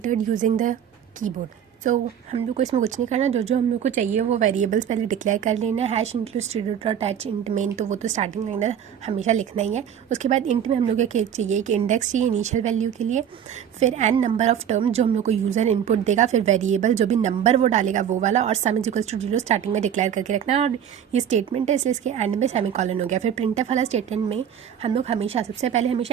using the keyboard. तो हम लोग को इसमें कुछ नहीं करना, जो हम लोग को चाहिए वो वेरिएबल्स पहले डिक्लेयर कर लेना है। हैश इंक्लूड स्टूडेंट और अटैच इंट मेन, तो वो तो स्टार्टिंग में हमेशा लिखना ही है। उसके बाद इंट में हम लोग को चाहिए कि इंडेक्स चाहिए इनिशियल वैल्यू के लिए, फिर एन नंबर ऑफ टर्म जो हम लोग को यूज़र इनपुट देगा, फिर वेरिएबल जो भी नंबर वो डालेगा वो वाला, और sum is equals to 0 starting में डिक्लेयर करके रखना है। और ये स्टेटमेंट है इसलिए इसके एंड में सेमीकोलन हो गया। फिर प्रिंटफ वाला स्टेटमेंट में हम लोग हमेशा सबसे पहले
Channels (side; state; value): left; quieter; 9.0 dB